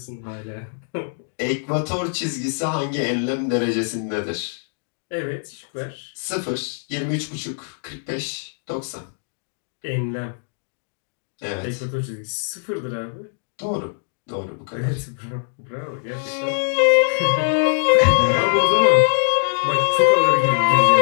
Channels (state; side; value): silent; right; digital silence